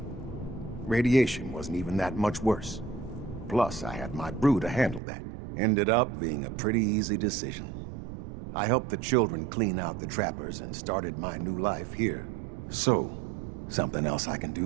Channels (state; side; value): drops out; left; at 5.0 s